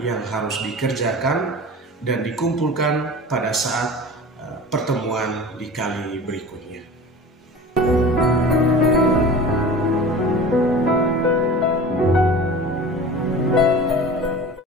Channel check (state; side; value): normal; both; correlation 0.37